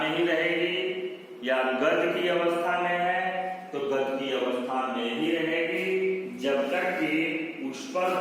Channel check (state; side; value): identical; both; correlation 1.00